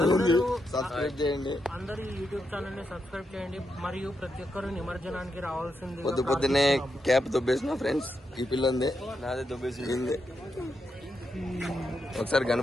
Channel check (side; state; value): both; normal; correlation 0.84